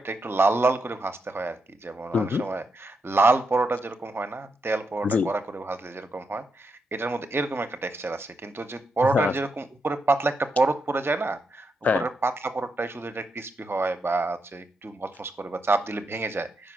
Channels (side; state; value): both; normal; correlation 0.82